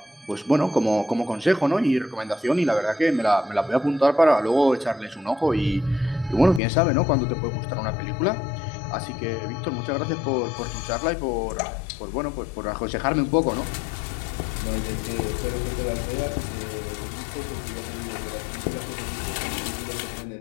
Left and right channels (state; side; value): drops out; right; at 6.6 s